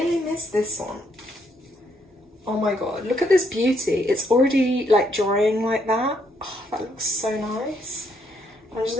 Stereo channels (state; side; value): normal; both; correlation 0.72